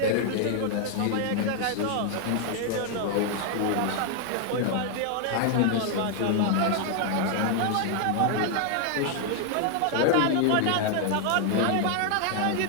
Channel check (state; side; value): different; both; correlation 0.00